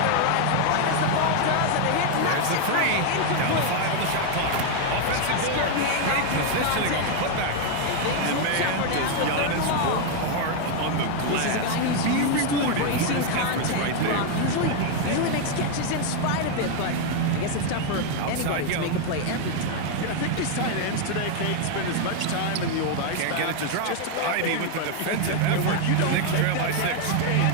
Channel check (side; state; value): both; different; correlation 0.01